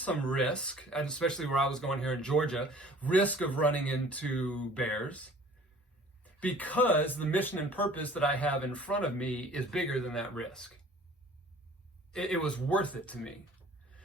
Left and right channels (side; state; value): both; normal; correlation 0.50